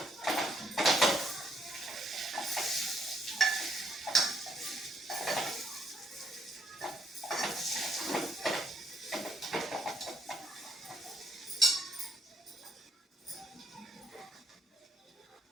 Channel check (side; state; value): both; normal; correlation 0.71